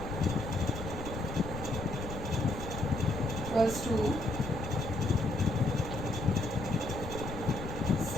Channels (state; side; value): noise; left; rumble, 8 dB below the sound